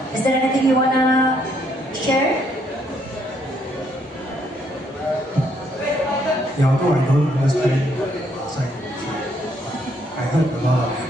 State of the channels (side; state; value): both; normal; correlation 0.70